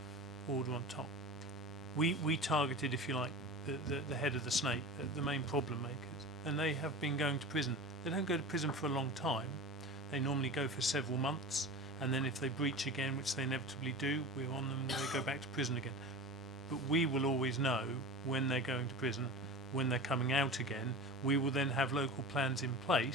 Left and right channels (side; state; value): both; normal; correlation 0.32